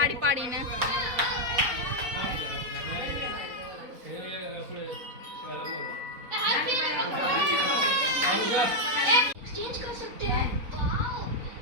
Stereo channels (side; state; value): left; late; 4.0 ms